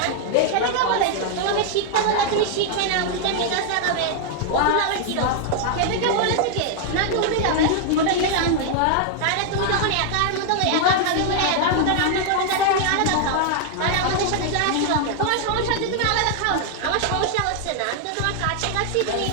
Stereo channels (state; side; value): different; both; correlation 0.00